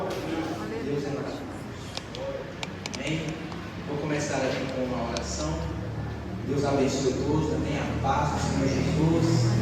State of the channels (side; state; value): both; identical; correlation 1.00